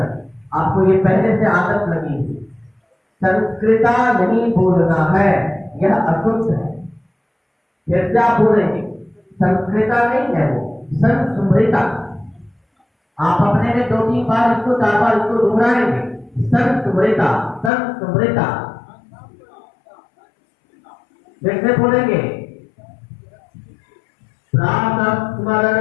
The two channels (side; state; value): right; drops out; at 17.7 s